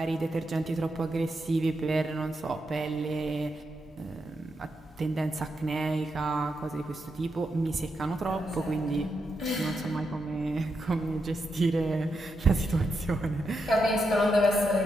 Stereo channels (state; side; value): normal; both; correlation 0.84